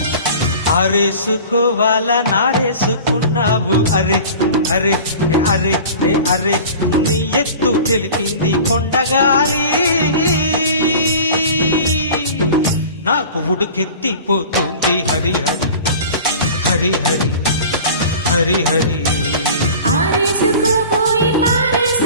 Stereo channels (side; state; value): both; inverted; correlation -0.40